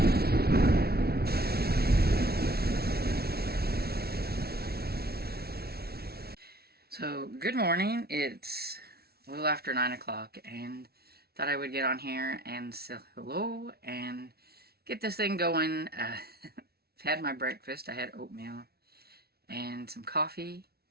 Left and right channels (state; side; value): late; left; 0.45 ms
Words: So, good morning. It's a little after 9 o'clock, and thought I would get on here and say hello and get this thing going. Had my breakfast. I had oatmeal and some coffee,